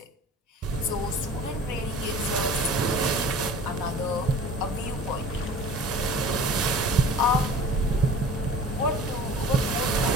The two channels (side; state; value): both; normal; correlation 0.42